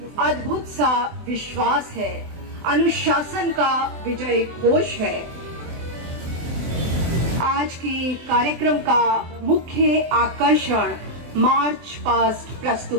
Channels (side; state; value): left; late; 24 ms